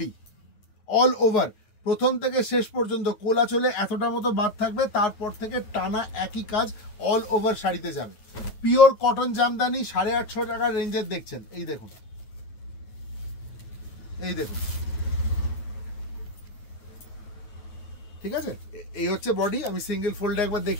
অল ওভার প্রথম থেকে শেষ পর্যন্ত কোলাচলে এতটা মতো বাদ থাকবে, তারপর থেকে টানা একই কাজ অল ওভার শাড়িতে যাবে। পিওর কটন জামদানি, 850 টাকার রেঞ্জের দেখছেন। এই দেখুন, এই দেখুন, ঠিক আছে। এই হচ্ছে বডি, আমি সিঙ্গেল ফোল্ডে একবার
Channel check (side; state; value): right; late; 9.4 ms